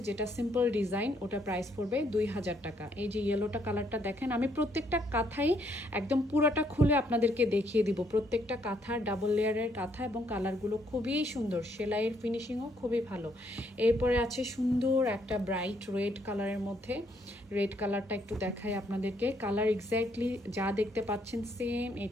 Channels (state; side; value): normal; both; correlation 0.71